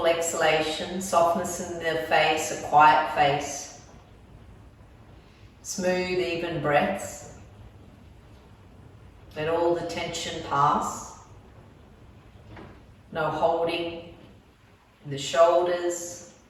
exhalation, softness in the face, a quiet face. Smooth, even breaths. Let all the tension pass. No holding in the shoulders,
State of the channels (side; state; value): both; identical; correlation 1.00